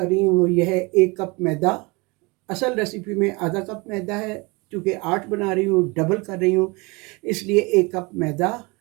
रही हूँ वो यह है 1 कप मैदा। असल रेसिपी में आधा कप मैदा है, चूँकि 8 बना रही हूँ, डबल कर रही हूँ, इसलिए 1 कप मैदा,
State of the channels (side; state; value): left; quieter; 26.5 dB